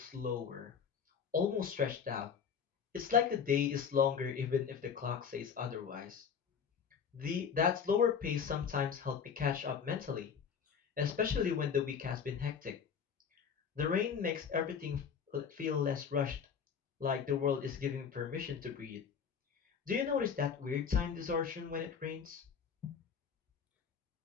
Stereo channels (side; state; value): right; quieter; 6.8 dB